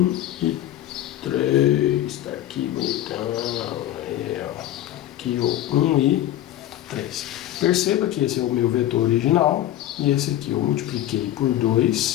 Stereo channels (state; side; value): quieter; right; 13.1 dB